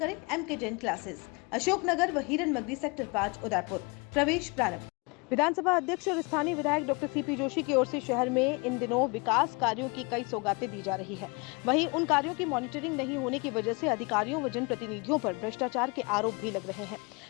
एम के जैन क्लासेस, अशोकनगर व हिरन मगरी सेक्टर 5 उदयपुर। प्रवेश प्रारंभ। विधानसभा अध्यक्ष और स्थानीय विधायक डॉक्टर सीपी जोशी की ओर से शहर में इन दिनों विकास कार्यों की कई सौगातें दी जा रही है। वहीं उन कार्यों की मॉनिटरिंग नहीं होने की वजह से अधिकारियों व जनप्रतिनिधियों पर भ्रष्टाचार के आरोप भी लग रहे हैं।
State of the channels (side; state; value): right; quieter; 29.1 dB